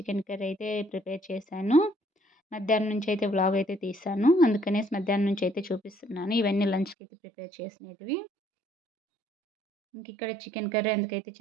curry అయితే ప్రిపేర్ చేశాను. మధ్యాహ్నం నుంచి అయితే వ్లాగ్ అయితే తీశాను. అందుకనేసి మధ్యాహ్నం నుంచి అయితే చూపిస్తున్నాను. ఇవన్నీ లంచ్కి అయితే ప్రిపేర్ చేసినవి. ఇక్కడ చికెన్ కర్రీ ఎందుకైతే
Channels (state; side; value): drops out; left; at 7.0 s